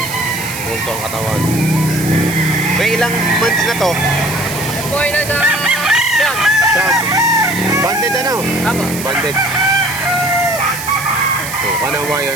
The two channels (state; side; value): noise; right; hiss, 9 dB below the sound